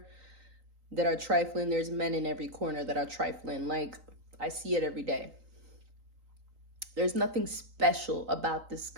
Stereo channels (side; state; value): left; late; 3.9 ms